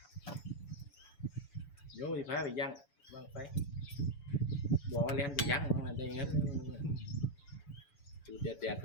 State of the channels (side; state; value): right; late; 7.0 ms